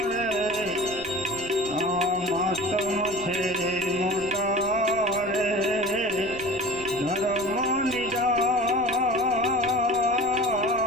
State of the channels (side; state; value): right; noise; rumble, 17 dB below the sound